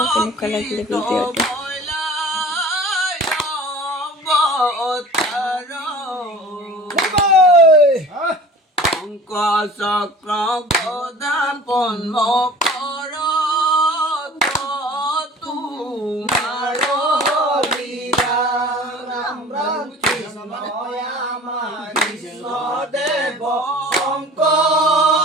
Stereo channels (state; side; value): normal; both; correlation 0.43